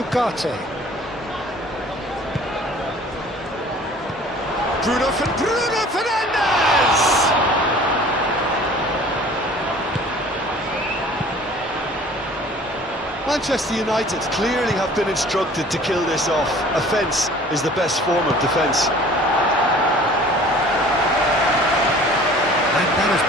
Bruno Fernandes! Manchester United clearly have been instructed to kill this off. Offence is the best form of defence. And that has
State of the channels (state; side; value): normal; both; correlation 0.49